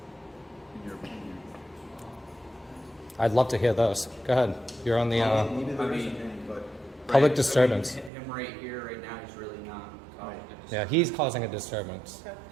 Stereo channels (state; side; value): drops out; left; at 8.1 s